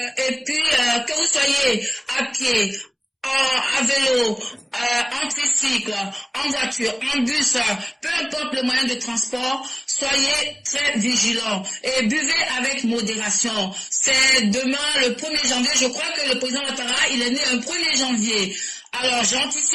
et puis que vous soyez à pied, à vélo, en tricycle, en voiture, en bus, peu importe le moyen de transport, soyez très vigilants et buvez avec modération. C'est demain le 1er janvier, je crois que le président Ouattara, il est né un 1er janvier. Alors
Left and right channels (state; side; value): identical; both; correlation 1.00